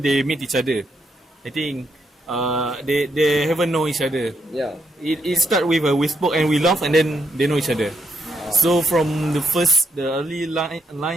they meet each other. I think they haven't know each other. Yeah. It start with we spoke and we laugh and then they know each other. So from the early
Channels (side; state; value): both; normal; correlation 0.78